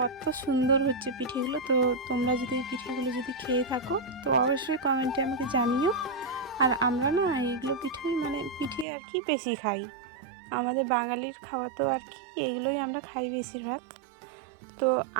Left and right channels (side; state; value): left; drops out; at 8.8 s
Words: সুন্দর হচ্ছে পিঠেগুলো। তো তোমরা যদি এই পিঠেগুলো যদি খেয়ে থাকো তো অবশ্যই কমেন্টে আমাকে জানিও। আর আমরা না এইগুলো পিঠে আর কি বেশি খাই। আমাদের বাঙালির খাওয়া তো আর কি এইগুলোই আমরা খাই বেশিরভাগ। তো